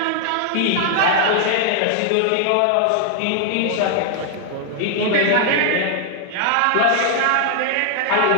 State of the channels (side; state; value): both; different; correlation 0.00